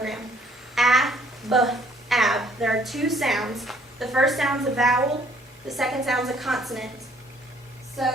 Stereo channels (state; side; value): normal; both; correlation 0.61